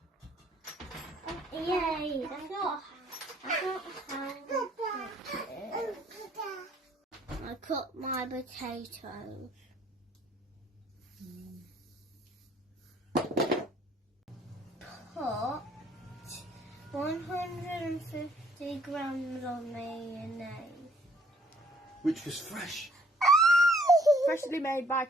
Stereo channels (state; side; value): normal; both; correlation 0.62